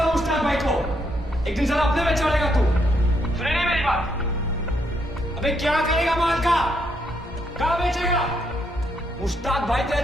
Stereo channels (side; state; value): both; normal; correlation 0.76